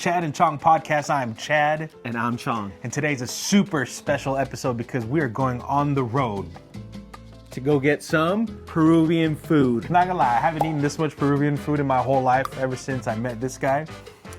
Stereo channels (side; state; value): both; identical; correlation 1.00